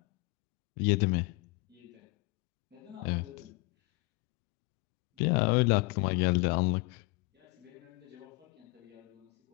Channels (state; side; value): quieter; right; 27.6 dB